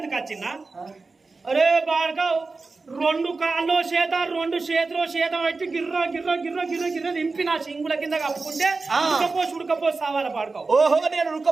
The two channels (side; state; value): left; quieter; 3.9 dB